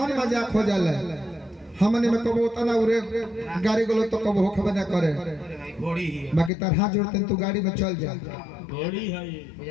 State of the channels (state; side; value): drops out; right; at 6.5 s